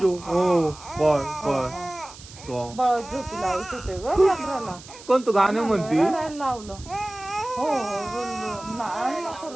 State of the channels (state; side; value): noise; right; hiss, 18 dB below the sound